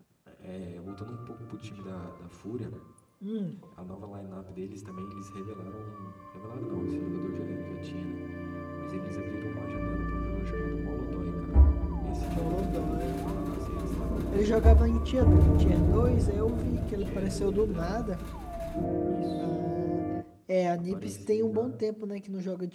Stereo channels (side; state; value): both; identical; correlation 1.00